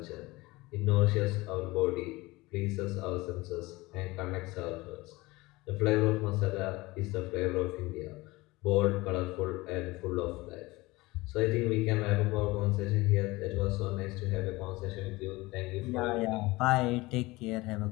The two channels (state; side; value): quieter; right; 21.4 dB